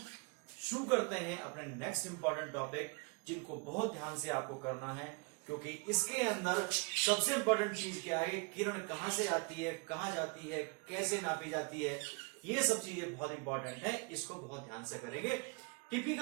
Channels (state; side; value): quieter; left; 32.0 dB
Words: शुरू करते हैं अपने नेक्स्ट इंपॉर्टेंट टॉपिक, जिनको बहुत ध्यान से आपको करना है, क्योंकि इसके अंदर सबसे इंपॉर्टेंट चीज क्या है, किरण कहां से आती है, कहां जाती है, कैसे नापी जाती है, ये सब चीजें बहुत इंपॉर्टेंट है। इसको बहुत ध्यान से करेंगे।